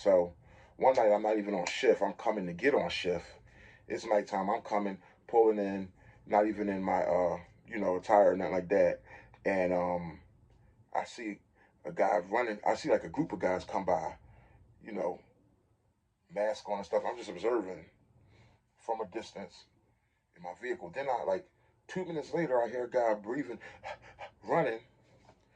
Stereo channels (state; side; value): identical; both; correlation 1.00